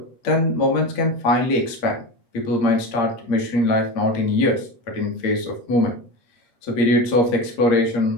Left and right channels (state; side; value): late; right; 8.6 ms